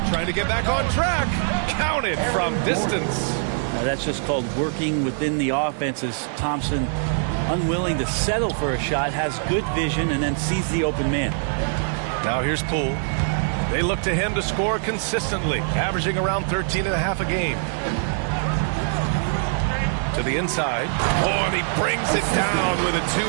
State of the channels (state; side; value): silent; left; 58 dB below the other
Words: Trying to get back on track. Counted from distance. Now that's just called working within the offense, as Thompson, unwilling to settle for a shot, has good vision and then sees the open man. Now here's Poole. They look to him to score consistently, averaging around 13.5 a game. To the inside. Oh, and he brings it down with a